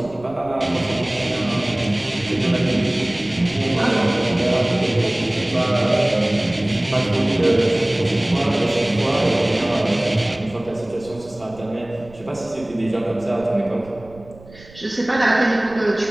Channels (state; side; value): noise; right; rumble, 21 dB below the sound